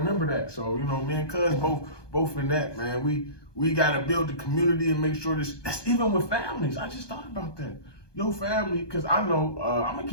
that. So, me and Cuz both in that, man. We got to build the community and make sure that's even with families. I just thought about that. Your family, because I know, I'm going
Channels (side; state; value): right; late; 1.2 ms